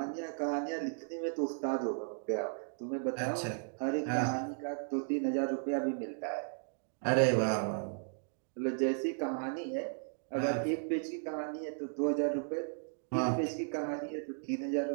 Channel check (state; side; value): silent; left; digital silence